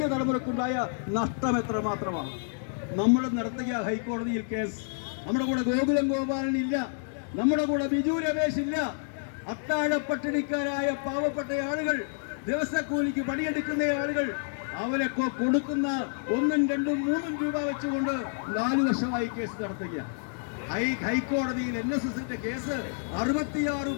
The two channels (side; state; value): right; silent; digital silence